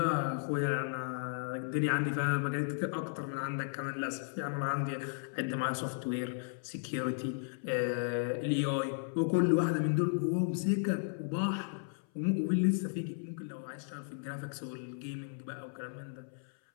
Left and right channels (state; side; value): silent; right; 55 dB below the other